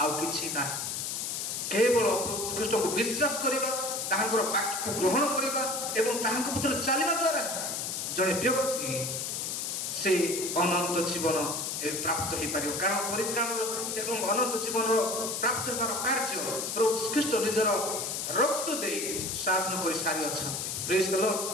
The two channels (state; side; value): noise; left; hiss, 3 dB below the sound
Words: କିଛି ନାହିଁ, କେବଳ ପ୍ରଭୁ ଖ୍ରୀଷ୍ଟଙ୍କୁ ବିଶ୍ୱାସ କରିବା, ତାହାଙ୍କର ବାକ୍ୟକୁ ଗ୍ରହଣ କରିବା ଏବଂ ତାହାଙ୍କ ପଥରେ ଚାଲିବା ଦ୍ୱାରା ଜଣେ ବ୍ୟକ୍ତି ସେ ଅନନ୍ତ ଜୀବନ ପ୍ରାପ୍ତ ହେଇପାରିବ। କାରଣ ପରିତ୍ରାଣର ଏବଂ ଅନନ୍ତ ଜୀବନର ପ୍ରାପ୍ତ ହେବାର କାର୍ଯ୍ୟ ପ୍ରଭୁ ଖ୍ରୀଷ୍ଟ ନିଜର ରକ୍ତ ଦେଇ ସାଧନ କରି ସାରିଅଛନ୍ତି। ପ୍ରେଜ୍ ଦ ଲର୍ଡ।